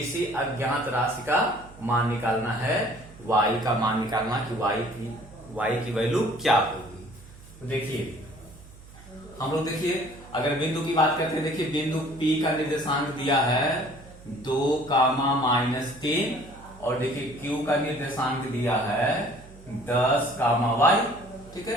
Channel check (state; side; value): noise; right; hum, 20 dB below the sound